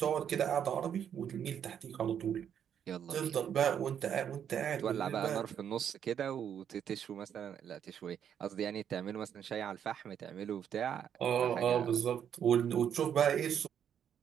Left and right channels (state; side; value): quieter; left; 8.8 dB